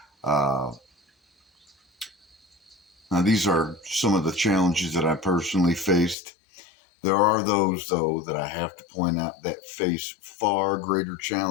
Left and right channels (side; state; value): right; drops out; at 6.2 s